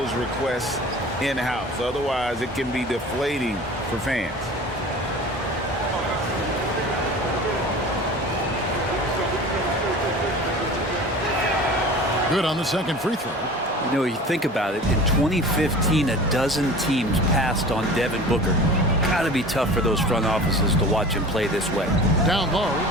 requests in-house. Otherwise, it can be deflating for fans. Good on the second free throw. You know, you think about it, in 2015, a dozen teams passed on Devin Booker. Got to be tough for those front offices to watch him play this way. Down low,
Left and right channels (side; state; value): both; normal; correlation 0.39